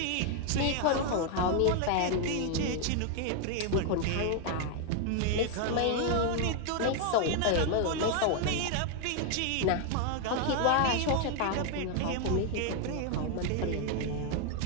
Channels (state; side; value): different; both; correlation 0.01